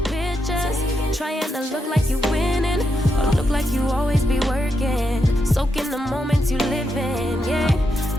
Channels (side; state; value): both; normal; correlation 0.83